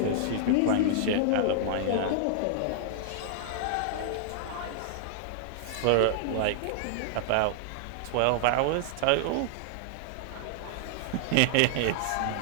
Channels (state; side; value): different; both; correlation 0.00